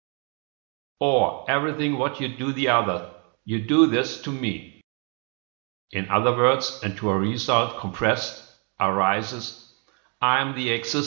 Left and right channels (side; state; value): left; quieter; 38.2 dB